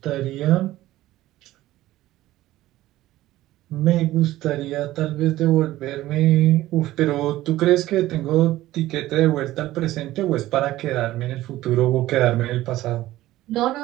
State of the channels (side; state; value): left; quieter; 15.8 dB